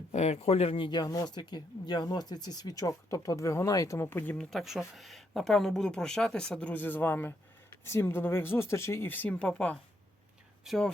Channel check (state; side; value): normal; both; correlation 0.76